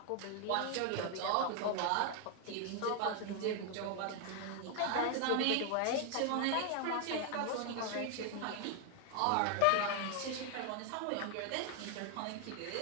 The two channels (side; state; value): both; different; correlation 0.00